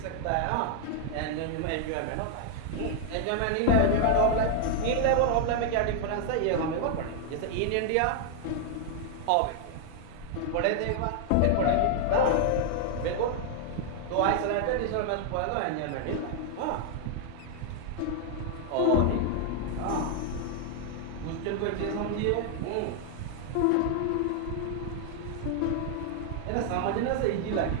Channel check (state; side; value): different; both; correlation 0.00